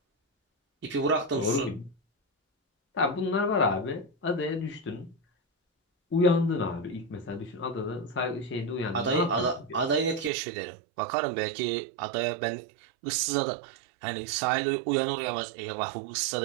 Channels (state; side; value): drops out; left; at 10.3 s